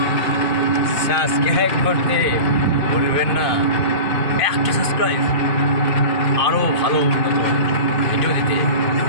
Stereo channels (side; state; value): right; late; 2.5 ms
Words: সাবস্ক্রাইব করতে ভুলবেন না। একটা সাবস্ক্রাইব আরও ভালো উন্নত ভিডিও দিতে